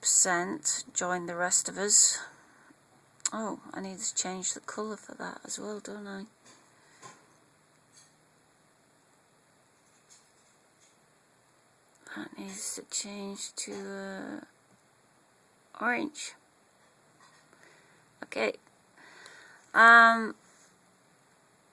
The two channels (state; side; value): identical; both; correlation 1.00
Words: joined the rest of us. Oh, I need to change the colour for that as well, don't I? That needs to change to orange. Okay.